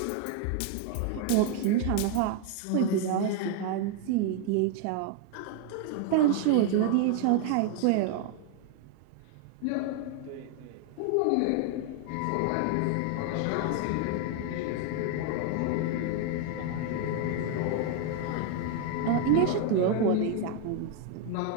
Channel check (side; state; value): both; different; correlation 0.00